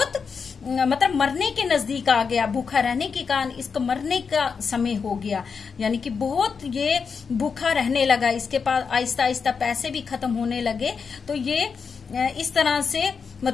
मतलब मरने के नजदीक आ गया। भूखा रहने के कारण इसको मरने का समय हो गया, यानी कि बहुत ये भूखा रहने लगा। इसके पास आहिस्ता आहिस्ता पैसे भी खत्म होने लगे। तो ये इस तरह से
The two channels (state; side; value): quieter; right; 5.7 dB